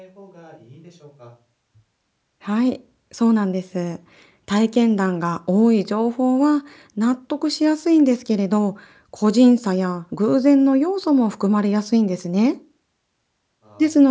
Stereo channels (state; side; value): identical; both; correlation 1.00